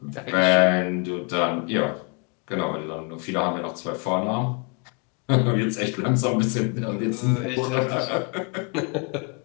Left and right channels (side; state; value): right; quieter; 35.1 dB